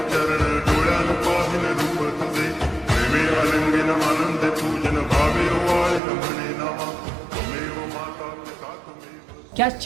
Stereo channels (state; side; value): drops out; left; at 6.0 s